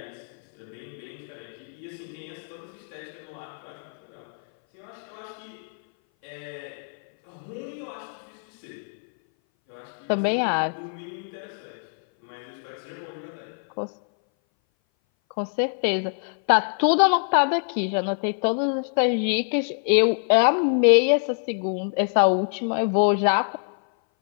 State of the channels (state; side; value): silent; right; 59 dB below the other